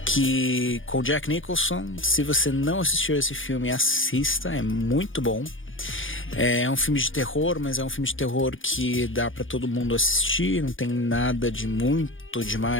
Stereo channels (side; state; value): right; late; 0.58 ms